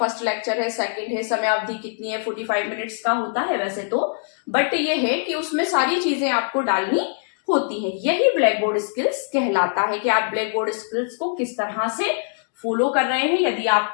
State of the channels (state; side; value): silent; right; digital silence